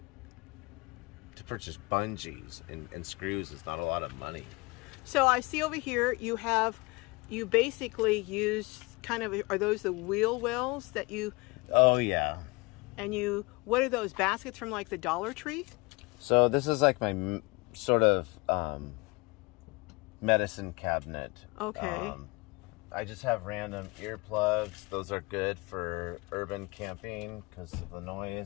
purchase bungees and screws is not a lot of money. So I see over here you basically use kind of, are those the wheel wells that you? Oh yeah. And what are those baskets from, like the Dollar Tree? So this is like my sort of medicine cabinet. Okay. I just have random earplugs. Those are good for urban camping because of the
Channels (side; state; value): right; quieter; 25.6 dB